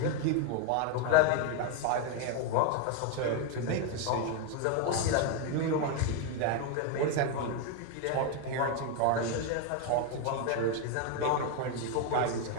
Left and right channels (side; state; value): both; different; correlation 0.01